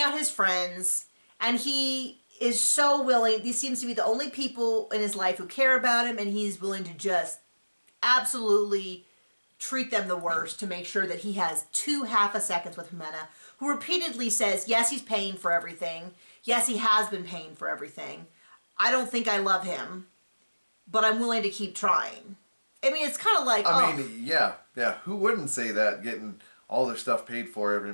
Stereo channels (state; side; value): inverted; both; correlation -1.00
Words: out his friends, and he is so willing. These seems to be the only people in his life who care about him, and he's willing to just absolutely treat them the worst to make sure that he has 2 half a seconds with Jimena, who repeatedly says, yes, he's paying for everything. Yes, he has been paying for everything. I don't think I love him, but I'm willing to keep trying. I mean, it's kind of like, I mean, yeah. Who wouldn't say that, getting all their stuff paid for every